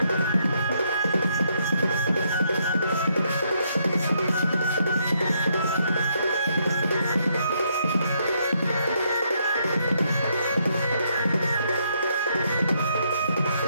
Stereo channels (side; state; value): both; inverted; correlation -0.74